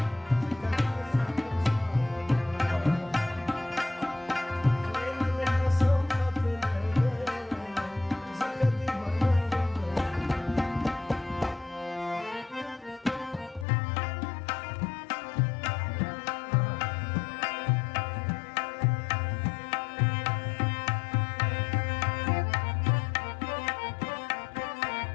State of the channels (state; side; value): drops out; right; at 13.7 s